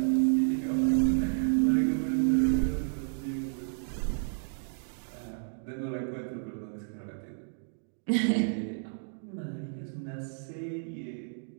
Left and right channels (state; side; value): silent; left; digital silence